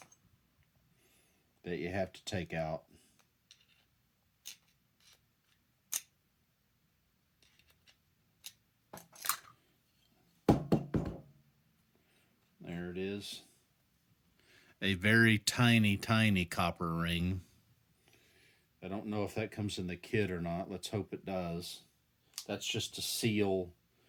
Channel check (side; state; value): both; identical; correlation 1.00